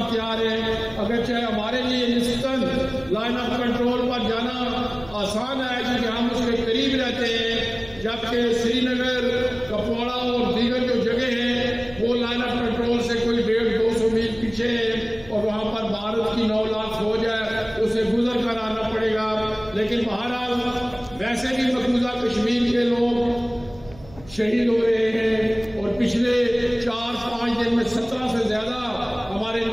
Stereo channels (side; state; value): right; noise; hum, 21 dB below the sound